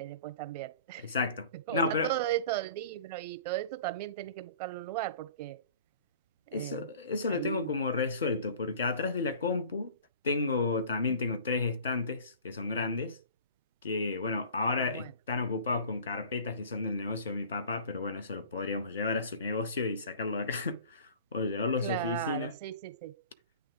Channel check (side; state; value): both; inverted; correlation -0.43